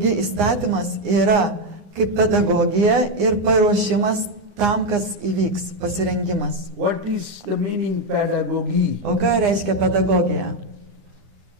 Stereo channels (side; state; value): left; late; 9.7 ms